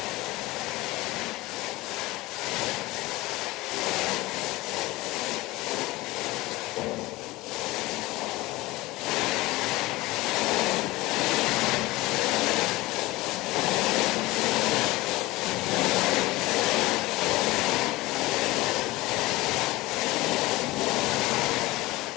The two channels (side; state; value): right; quieter; 20.1 dB